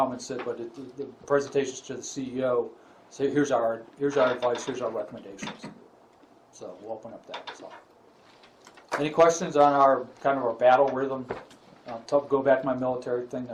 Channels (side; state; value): both; identical; correlation 1.00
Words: and sit, but the presentations to the CEO, say here's our advice, here's our recommendations. So we'll open up that. So, any questions on our kind of our battle rhythm? Go back to my military thing.